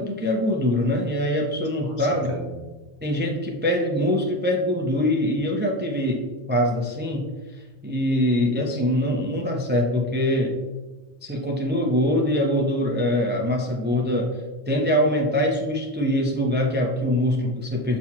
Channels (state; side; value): normal; both; correlation 0.23